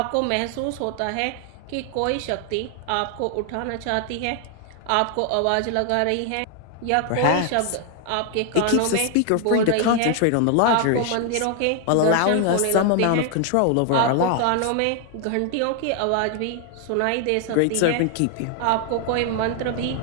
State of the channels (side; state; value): both; different; correlation 0.00